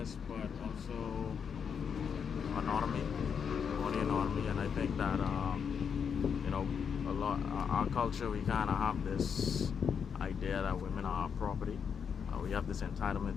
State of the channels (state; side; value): quieter; right; 6.9 dB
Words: but also autonomy, body autonomy, and I think that you know a lot our culture, we kind of have this idea that women are property. We have this entitlement